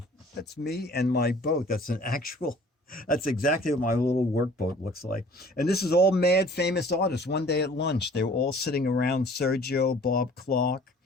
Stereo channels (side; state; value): both; normal; correlation 0.51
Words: That's me and my boat. That's an actual, that's exactly what my little workboat looks like. And this is all mad famous artists. One day at lunch, they were all sitting around Sergio, Bob Clark.